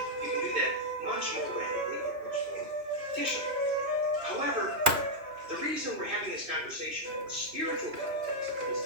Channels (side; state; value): left; late; 3.0 ms